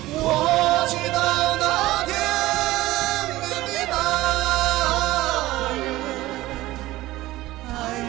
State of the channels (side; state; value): left; quieter; 17.3 dB